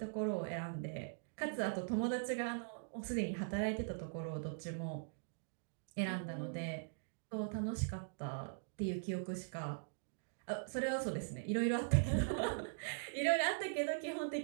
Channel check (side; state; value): left; silent; digital silence